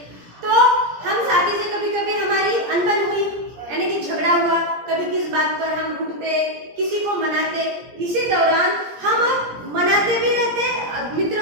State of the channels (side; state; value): left; late; 17 ms